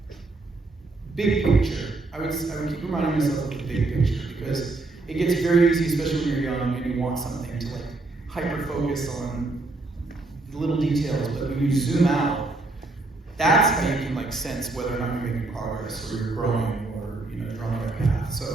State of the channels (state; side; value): quieter; left; 3.2 dB